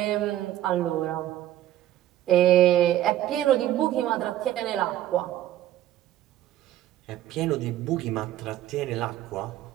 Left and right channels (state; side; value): quieter; left; 13.2 dB